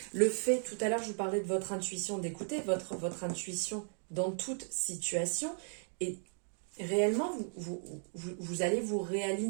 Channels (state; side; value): silent; left; 54 dB below the other